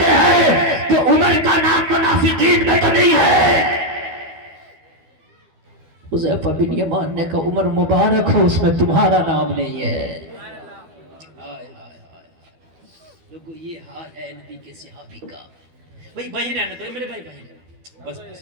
ہیں کہ عمر کا نام منافقین میں تو نہیں ہے؟ حذیفہ بن یمان نے کہا عمر مبارک ہو، اس میں تمہارا نام نہیں ہے۔ لوگو یہ حال ہے نبی کے صحابی کا۔ بھائی بھائی رہنے دو میرے بھائی بھائی، بس بس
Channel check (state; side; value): late; left; 12 ms